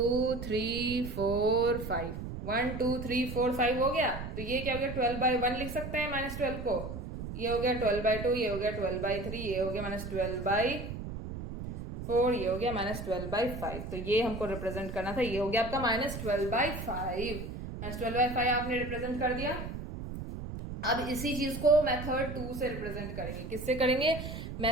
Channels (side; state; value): right; noise; rumble, 7 dB below the sound